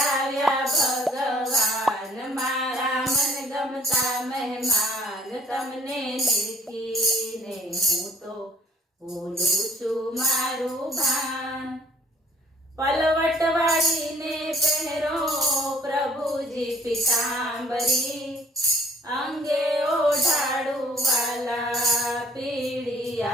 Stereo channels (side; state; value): both; normal; correlation 0.58